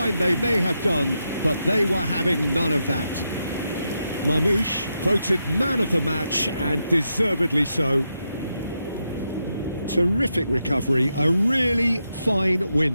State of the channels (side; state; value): both; inverted; correlation -0.85